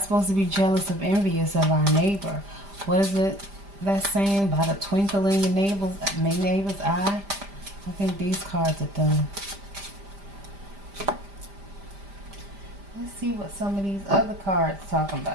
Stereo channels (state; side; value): late; left; 5.0 ms